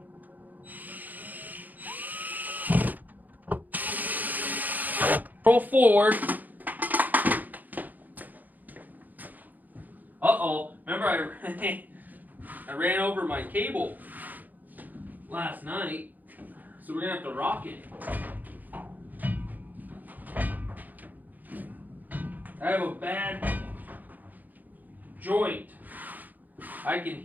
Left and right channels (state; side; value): late; left; 0.083 ms